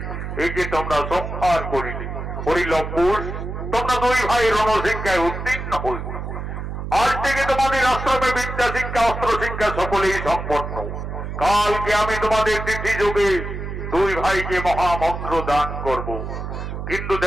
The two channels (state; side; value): noise; right; hum, 6 dB below the sound